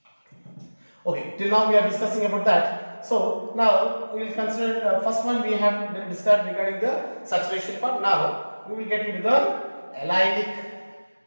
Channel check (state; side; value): inverted; both; correlation -1.00